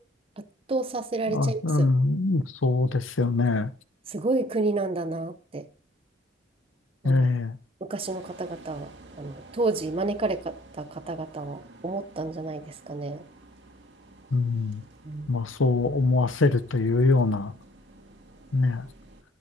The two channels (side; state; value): both; normal; correlation 0.60